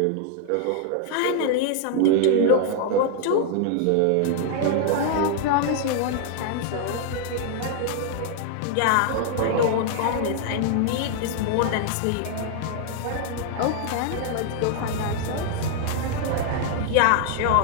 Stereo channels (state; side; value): different; both; correlation 0.00